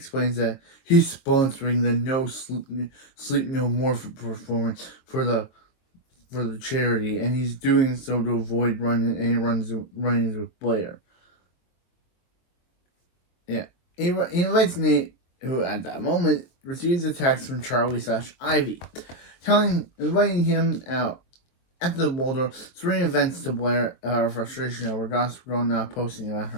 that he's sponsoring the No Sleep No More performance for the charity, and he's doing so to avoid run-ins with Blair. He invites Nate, who at that moment receives a text from Charlie/Ivy, inviting him out. At the Waldorf, Serena vents to Blair her frustration over Gossip Girl not posting about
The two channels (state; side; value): late; right; 23 ms